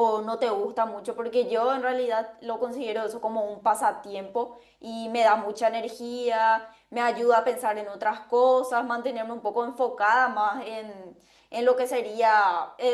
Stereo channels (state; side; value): identical; both; correlation 1.00